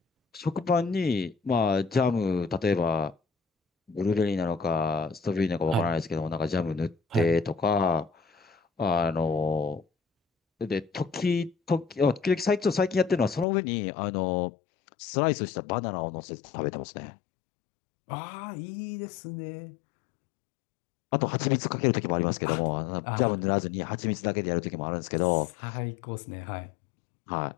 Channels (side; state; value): right; drops out; at 13.5 s